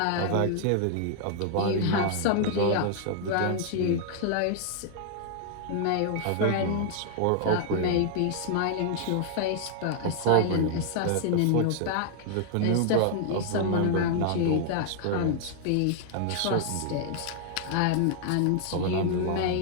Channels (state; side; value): different; both; correlation -0.01